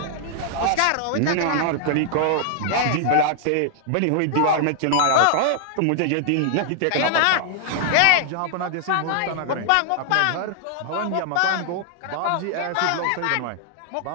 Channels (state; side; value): different; both; correlation -0.01